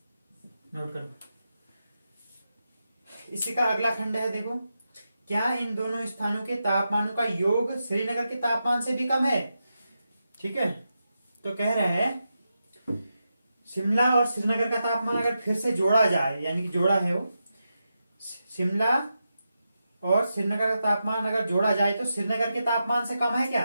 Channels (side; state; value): both; inverted; correlation -0.88